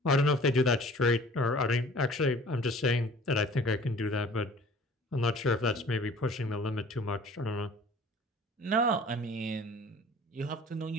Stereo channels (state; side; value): normal; both; correlation 0.48